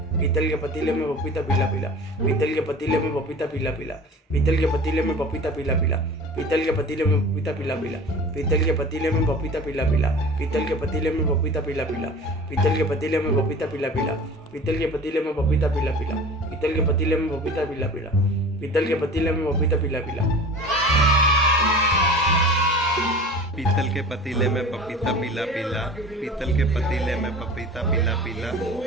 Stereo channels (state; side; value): normal; both; correlation 0.40